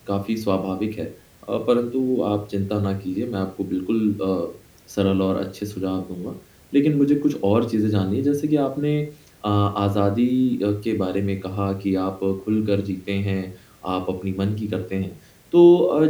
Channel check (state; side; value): identical; both; correlation 1.00